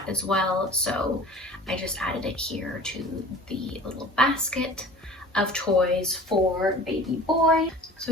as well, so I just added it here to the little basket of toys for baby boy.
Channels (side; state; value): both; normal; correlation 0.43